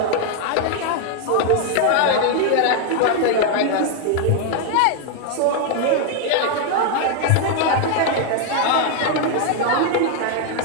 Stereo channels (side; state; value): both; different; correlation 0.00